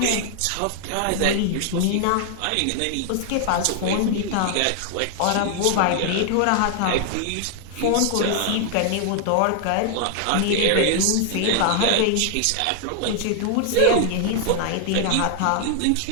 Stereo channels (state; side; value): different; both; correlation 0.00